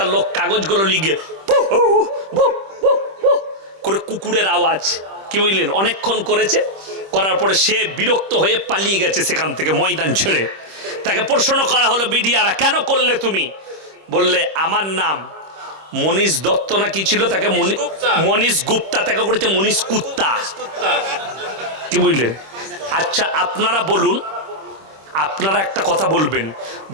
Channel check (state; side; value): late; left; 26 ms